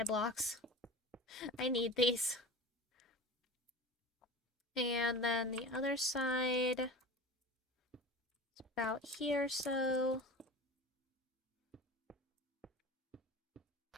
blocks. I need these. And then the other side... It's about here, so...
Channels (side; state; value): both; normal; correlation 0.33